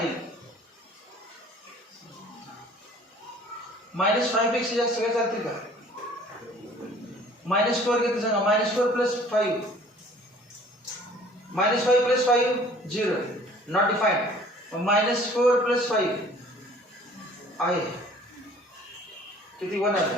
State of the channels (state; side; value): normal; both; correlation 0.52